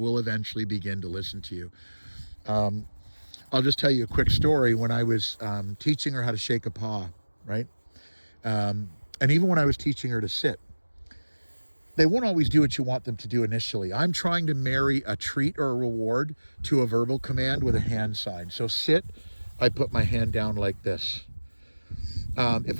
eventually begin to listen to you. I'll just tell you a quick story. When I was teaching her how to shake a paw, right? And even when I was teaching her to sit, they won't always do what you want them to do initially. I'm trying to marry a treat or a reward to a verbal command with a hand sign. So sit, I put my hand down like this.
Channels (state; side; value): inverted; both; correlation -1.00